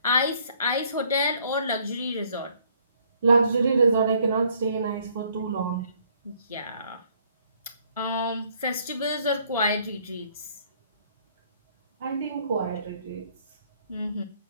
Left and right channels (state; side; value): inverted; both; correlation -0.64